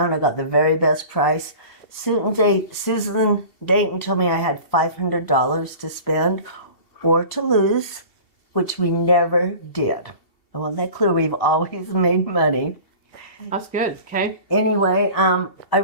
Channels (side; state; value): right; late; 2.7 ms